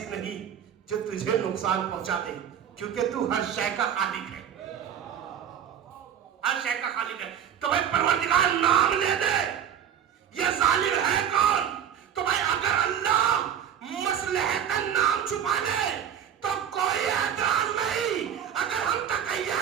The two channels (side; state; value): left; quieter; 9.1 dB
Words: نہیں جو تجھے نقصان پہنچا دے کیونکہ تو ہر شے کا خالق ہے, ہر شے کا خالق ہے. تو بھائی پروردگار نام لے دے. یہ ظالم ہے کون؟ تو بھائی اگر اللہ مصلحتاً نام چھپا دے تو کوئی اعتراض نہیں. اگر ہم تقیہ